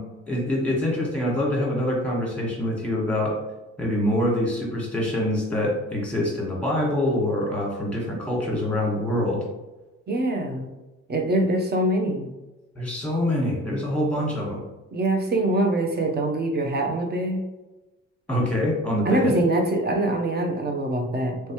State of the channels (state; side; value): normal; both; correlation 0.44